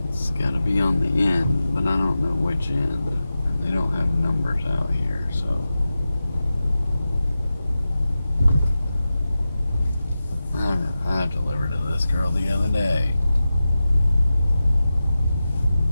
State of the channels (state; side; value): inverted; both; correlation -0.93